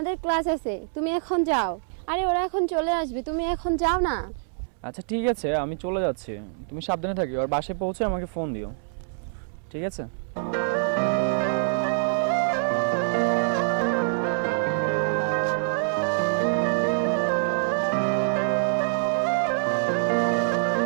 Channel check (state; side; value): silent; left; 61 dB below the other